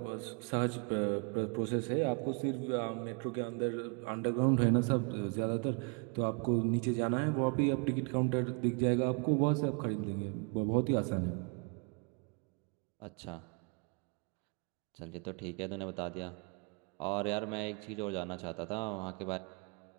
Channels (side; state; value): left; quieter; 35.0 dB